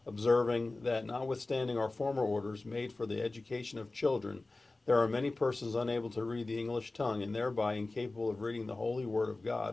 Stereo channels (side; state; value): right; quieter; 3.2 dB